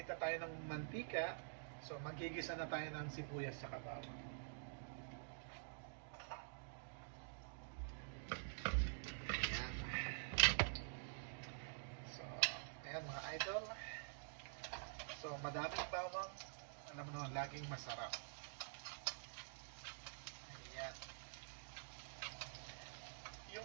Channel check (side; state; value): left; silent; digital silence